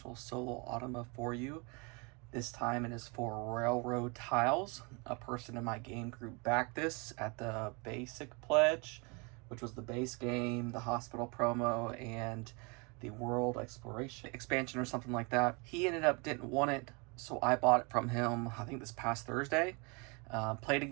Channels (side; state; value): left; quieter; 30.7 dB